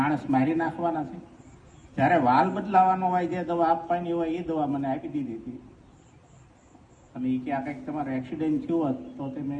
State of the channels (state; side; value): identical; both; correlation 1.00